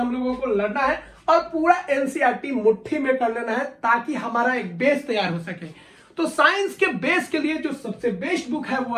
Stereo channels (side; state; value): both; identical; correlation 1.00